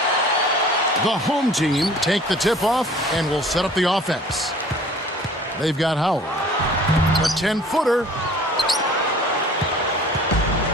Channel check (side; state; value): both; normal; correlation 0.49